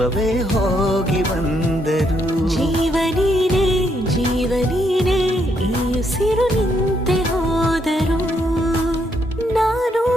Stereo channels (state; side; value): normal; both; correlation 0.75